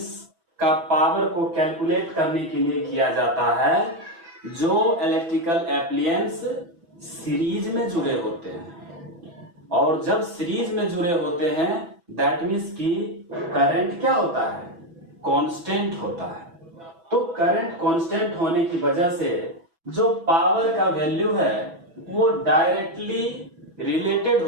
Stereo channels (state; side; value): late; left; 6.1 ms